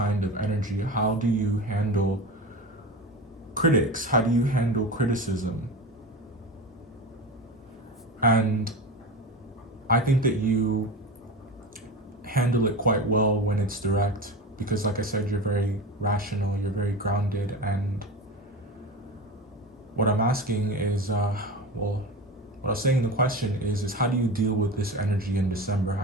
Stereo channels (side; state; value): both; normal; correlation 0.27